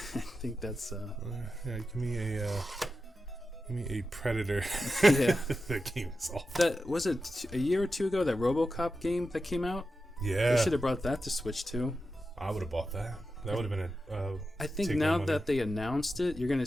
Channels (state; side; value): normal; both; correlation 0.91